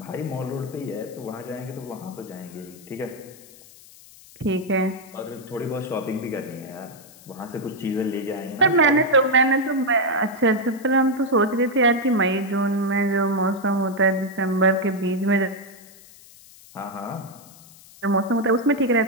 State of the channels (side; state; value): left; noise; hiss, 22 dB below the sound